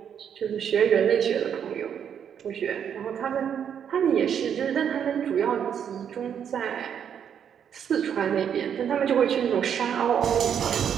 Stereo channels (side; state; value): left; quieter; 8.3 dB